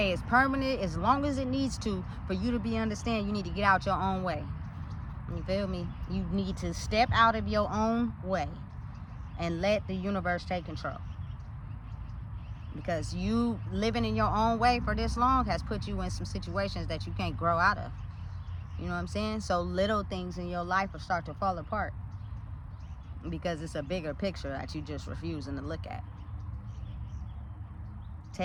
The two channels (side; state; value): both; identical; correlation 1.00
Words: as permanent as long as it needs to for you to understand you need to get out your own way. You feel me? You need to step out of your own way and let the universe take control. Because you living in your own way for this long has put you in some situations that you can't grow out of. You know what I'm saying? So little things in your life will start to fall apart because it's a bigger picture that you just refusing to look at.